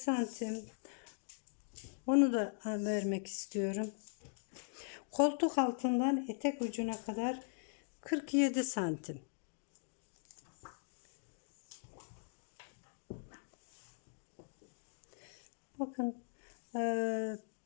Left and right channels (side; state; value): right; silent; digital silence